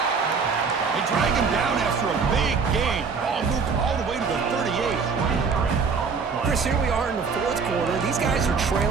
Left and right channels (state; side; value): quieter; left; 5.3 dB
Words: They drag him down after a big gain. Ball moved all the way to the 38. Chris, here we are in the 4th quarter. These guys are